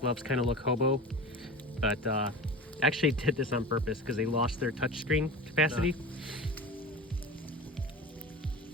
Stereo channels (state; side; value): normal; both; correlation 0.32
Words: kind of look hobo, but I actually did this on purpose because they lost their touchscreen capacity.